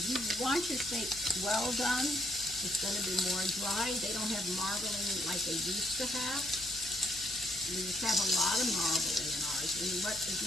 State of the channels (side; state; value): left; noise; hum, 18 dB below the sound